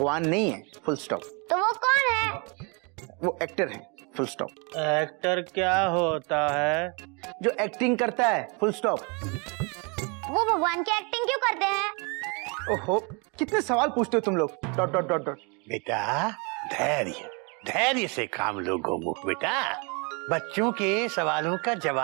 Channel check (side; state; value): left; quieter; 32.0 dB